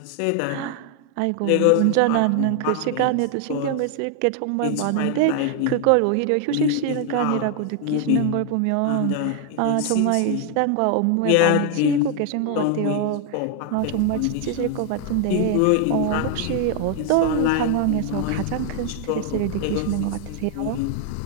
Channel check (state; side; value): different; both; correlation 0.00